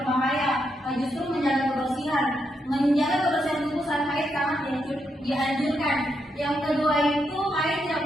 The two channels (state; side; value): normal; both; correlation 0.81